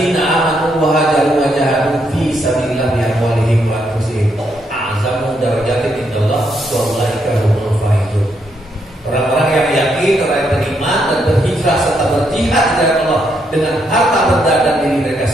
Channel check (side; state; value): both; normal; correlation 0.77